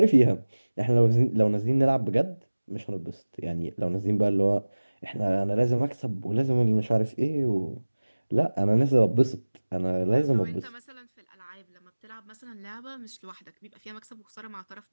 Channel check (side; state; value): both; inverted; correlation -1.00